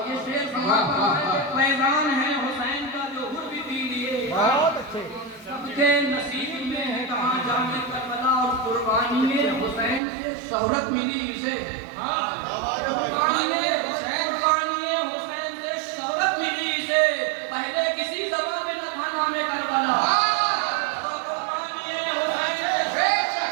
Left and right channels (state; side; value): drops out; left; at 10.0 s